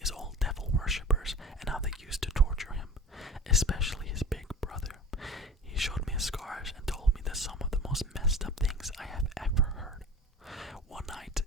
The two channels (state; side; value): normal; both; correlation 0.37